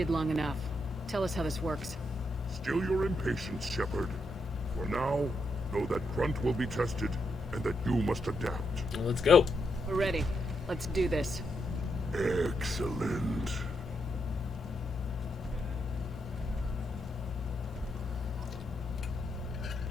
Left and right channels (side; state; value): both; normal; correlation 0.81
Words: long enough. Tell us how this works. Still your impatience, Shepard. For now, know that Grunt will be tested, and that you must adapt. Well, let's go. We're ready. Let's do this. Excellent.